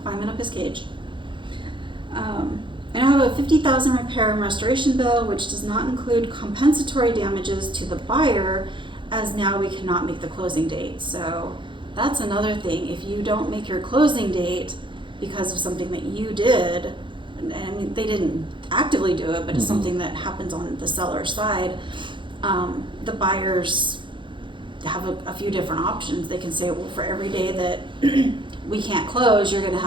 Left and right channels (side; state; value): left; late; 0.24 ms